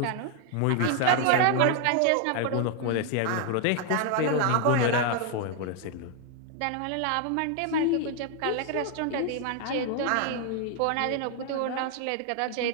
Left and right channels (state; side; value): different; both; correlation 0.00